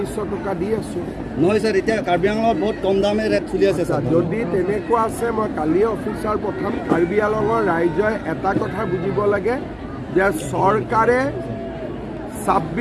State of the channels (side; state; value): both; identical; correlation 1.00